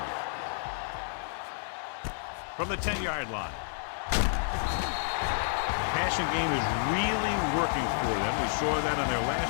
From the 10-yard line. Passing game is really working for them. We saw that on their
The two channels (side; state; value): right; silent; digital silence